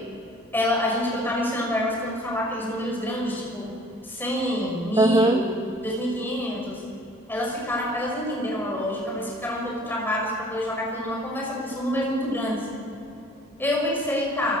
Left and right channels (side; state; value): both; normal; correlation 0.52